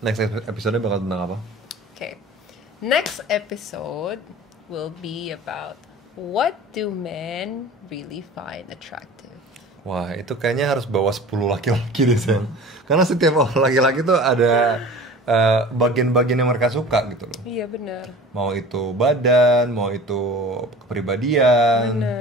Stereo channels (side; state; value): both; normal; correlation 0.40